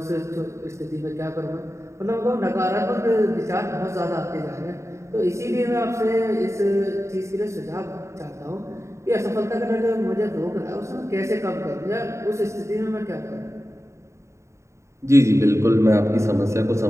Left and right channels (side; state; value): left; late; 0.14 ms